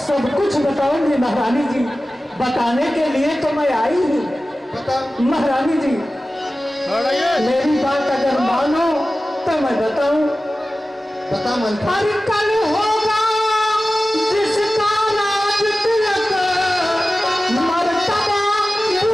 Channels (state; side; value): normal; both; correlation 0.95